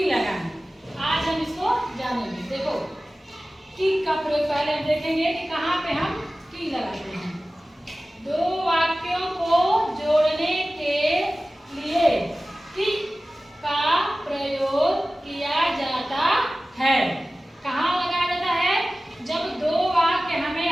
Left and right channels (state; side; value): normal; both; correlation 0.96